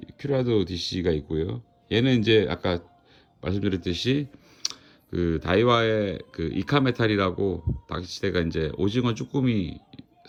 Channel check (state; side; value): identical; both; correlation 1.00